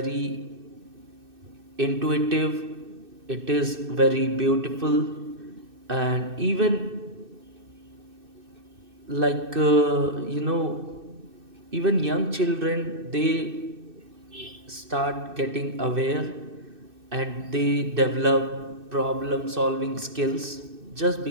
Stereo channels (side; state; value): left; late; 2.6 ms